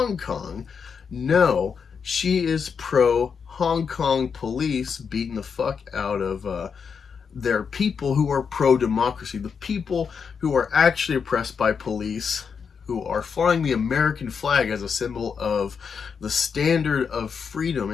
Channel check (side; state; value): right; quieter; 6.2 dB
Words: Kong. No, she is pro Hong Kong police beating the fuck out of their people who are pro-democracy, the people who are actually oppressed by police, who are flying the American flag as a symbol of the standard of freedom